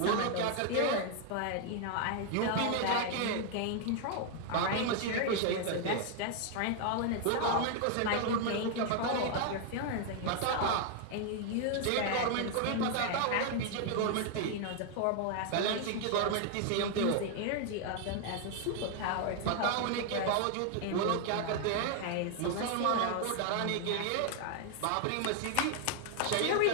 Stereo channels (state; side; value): different; both; correlation 0.00